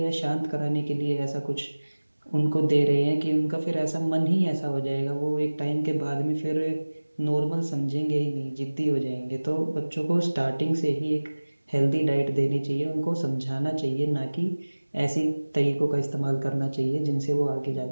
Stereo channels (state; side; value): inverted; both; correlation -1.00